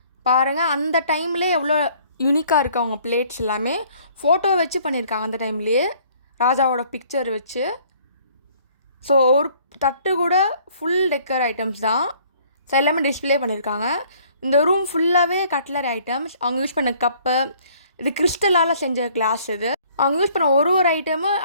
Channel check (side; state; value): both; inverted; correlation -0.58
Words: பாருங்கள் அந்த டைம்லேயே எவ்வளோ யூனிக்காக இருக்குது. அவங்க பிளேட்ஸ் எல்லாமே ஃபோட்டோ வச்சு பண்ணியிருக்காங்க அந்த டைம்லேயே, ராஜாவோட பிக்சர் வச்சு. ஸோ ஒரு தட்டு கூட ஃபுல் டெக்கர் ஐட்டம்ஸ் தான். ஸோ எல்லாமே டிஸ்பிளே பண்ணியிருக்காங்க. இந்த ரூம் ஃபுல்லாகவே கட்லரி ஐட்டம்ஸ். அவங்க யூஸ் பண்ண கப்பு, இது கிறிஸ்டலால் செஞ்ச கிளாஸ். இது அவங்க யூஸ் பண்ண ஒரு ஐட்டமும்